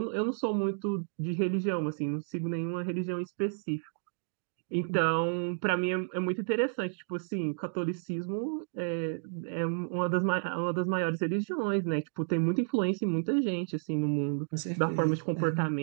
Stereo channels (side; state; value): left; silent; digital silence